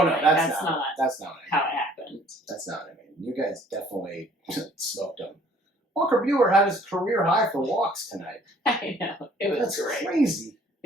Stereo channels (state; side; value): normal; both; correlation 0.57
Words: no, like, that's not how it happened. That's not what I mean. You guys definitely smoked them. Walker Buehler had his career high for walks tonight. I know. It was great. Crazy.